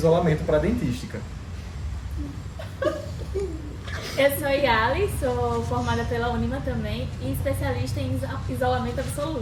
para dentística. Eu sou Yali, sou formada pela Unima também e especialista em isolamento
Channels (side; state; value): both; identical; correlation 1.00